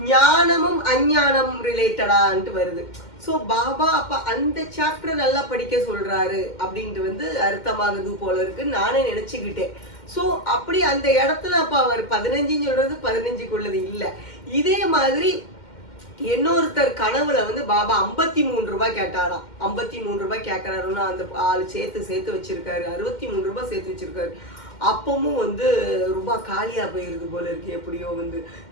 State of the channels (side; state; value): right; late; 2.1 ms